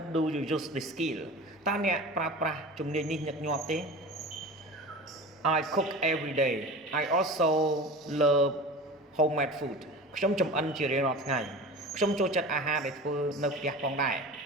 do you use this skill តើអ្នកប្រើប្រាស់ជំនាញនេះញឹកញាប់ទេ I cook every day I also love homemade food ខ្ញុំចម្អិនជារៀងរាល់ថ្ងៃខ្ញុំចូលចិត្តអាហារដែលធ្វើនៅផ្ទះផងដែរ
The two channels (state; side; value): normal; both; correlation 0.34